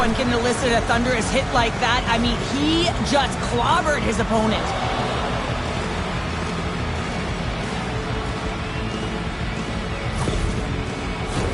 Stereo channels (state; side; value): identical; both; correlation 1.00